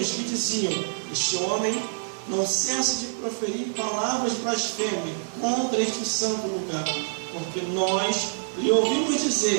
que diziam: este homem não cessa de proferir palavras blasfêmias contra este santo lugar, porque nós lhe ouvimos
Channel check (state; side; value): silent; left; digital silence